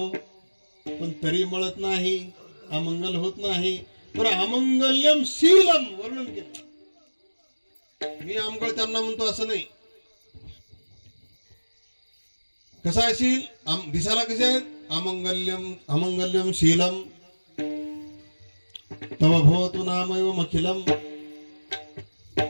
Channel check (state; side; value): inverted; both; correlation -1.00